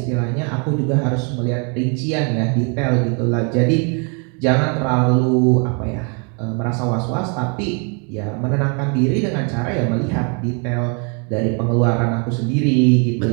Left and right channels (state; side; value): quieter; left; 36.6 dB